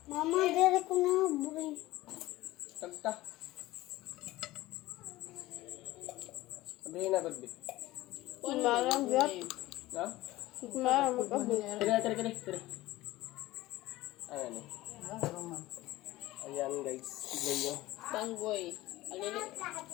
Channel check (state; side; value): quieter; right; 17.5 dB